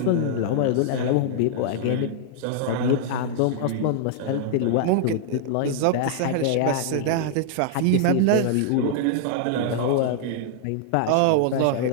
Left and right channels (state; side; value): different; both; correlation -0.01